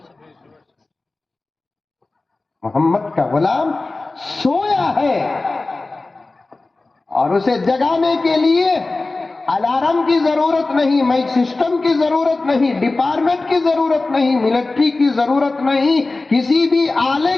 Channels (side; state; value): right; quieter; 3.3 dB